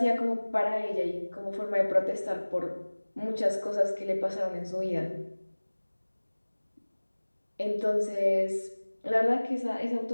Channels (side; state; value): both; inverted; correlation -1.00